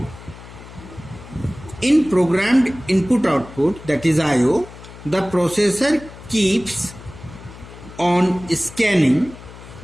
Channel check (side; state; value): left; noise; hum, 17 dB below the sound